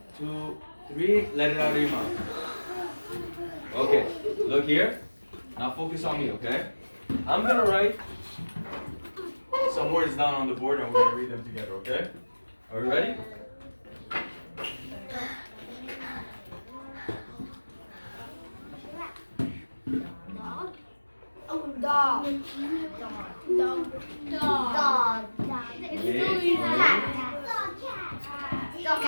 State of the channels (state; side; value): inverted; both; correlation -1.00